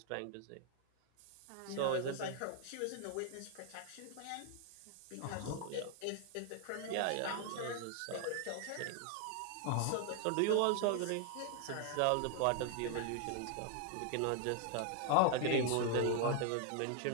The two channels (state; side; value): different; both; correlation 0.00